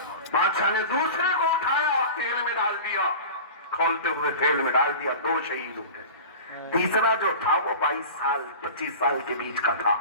بادشاہ نے دوسرے کو اٹھایا، تیل میں ڈال دیا، کھولتے ہوئے تیل میں ڈال دیا، 2 شہید ہو گئے۔ تیسرا جو تھا وہ 22 سال 25 سال کے بیچ کا تھا۔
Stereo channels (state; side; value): inverted; both; correlation -0.34